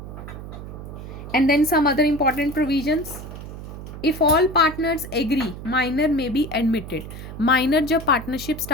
And then some other important provisions. If all partners agree, minor may be admitted. Minor जब पार्टनरशिप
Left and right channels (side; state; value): right; noise; hum, 11 dB below the sound